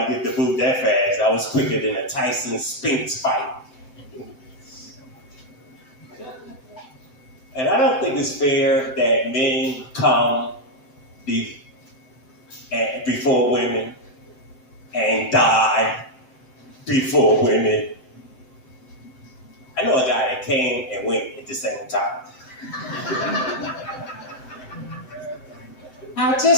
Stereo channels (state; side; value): late; right; 7.8 ms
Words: get the boot that fast. I was quicker than a Tyson Spinks fight. And I don't think it's fair that men come before women and die before women. I know a guy that came and went at the same time. I